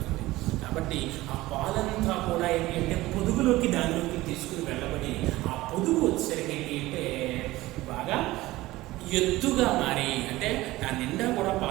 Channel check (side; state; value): left; quieter; 18.1 dB